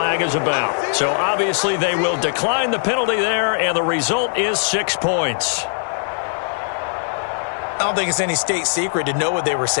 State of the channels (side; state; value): right; silent; 66 dB below the other